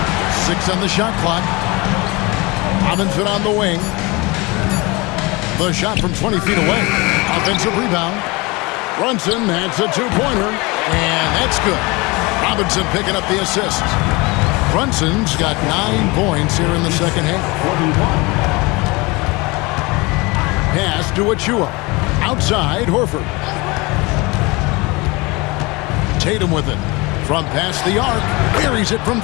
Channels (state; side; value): quieter; right; 25.0 dB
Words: 6 on the shot clock. Robinson on the wing. The shot from 20 feet away. Offensive rebound. Brunson adds a two-pointer, and that's good. Robinson picking up the assist. Brunson's got 9 points here in the second half. Pass to Achiuwa. Outside, Horford. Tatum with it. From past the arc. Buries it from